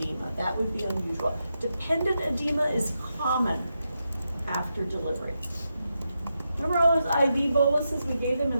that would be unusual. Dependent edema is common after delivery. Remember all those IV boluses we gave them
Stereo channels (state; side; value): inverted; both; correlation -0.86